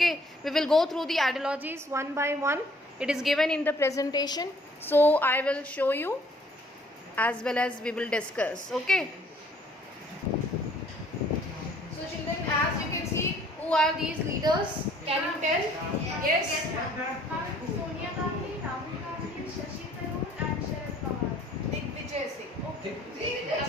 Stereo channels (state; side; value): normal; both; correlation 0.59